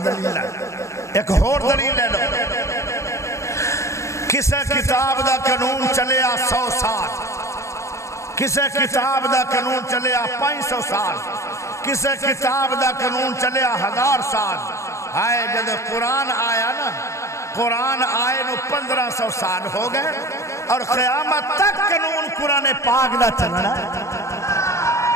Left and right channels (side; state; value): right; late; 0.14 ms